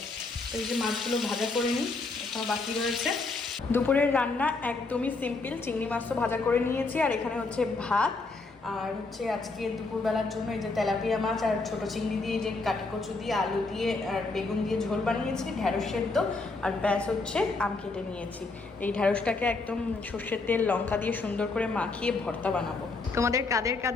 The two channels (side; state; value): right; quieter; 3.7 dB